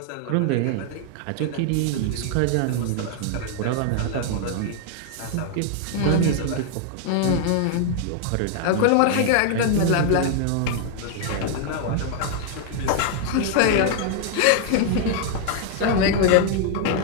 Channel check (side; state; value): both; different; correlation 0.00